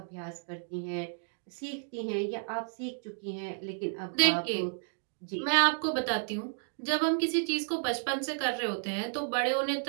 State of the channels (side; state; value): left; silent; 56 dB below the other